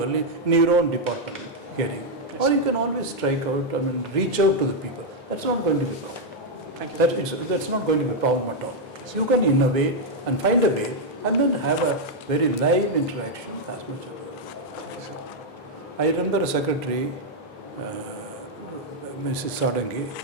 in your own department, hearing. Or you can always strike out, reach out to the people. That's not going to be a problem. Thank you. That's not going to be a problem at all. You can innovate and find a way and then have a very live interaction as much as possible. I remember a secretary, Mrs. Sadangi,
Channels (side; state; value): both; normal; correlation -0.01